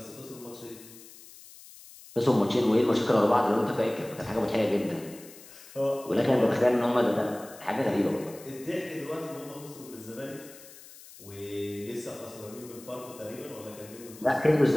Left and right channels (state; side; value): noise; left; hiss, 19 dB below the sound